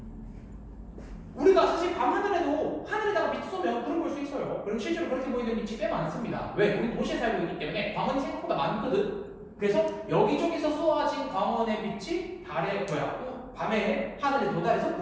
우리가 사실 밤하늘에도 하늘에다가 빛 쏘면 구름 볼 수 있어요. 그리고 실제로 그렇게 보이는 빛이 꽤 많습니다. 왜? 우리 도시에 살고 있기 때문에 광원이 생각보다 많거든? 그래서 여기저기서 쏘아진 광원의 빛이 밤에 하늘에 도달해서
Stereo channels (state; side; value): identical; both; correlation 1.00